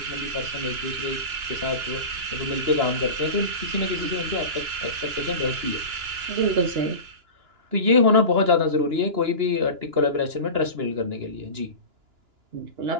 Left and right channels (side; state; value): left; late; 2.9 ms